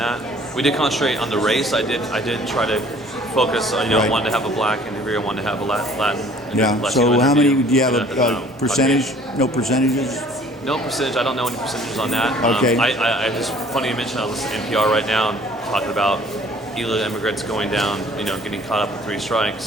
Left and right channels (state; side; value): normal; both; correlation 0.53